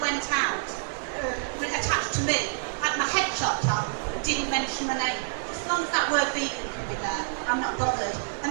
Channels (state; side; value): silent; left; digital silence